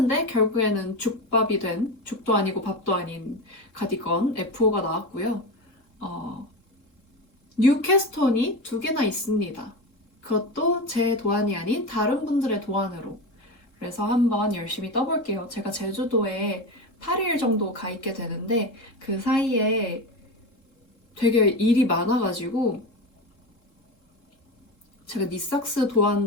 결국에는 죽밥이 된, 죽도 아니고 밥도 아닌 가디건 F5가 나왔고요. 뉴캐스톤이 2개나 있습니다. 그것도 제 도안이 아닌 다른 분들의 도안으로. 그래서 한번 열심히 떠볼게요. 제가 제주도에 8일 정도 가 있게 되는데 그 사이에 되게 일이 많아가지고 제가 니삭스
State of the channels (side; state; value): right; late; 3.7 ms